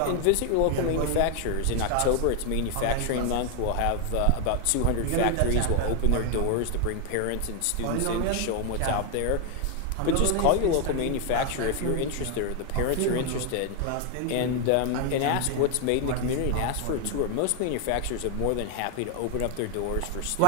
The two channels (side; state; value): both; different; correlation 0.00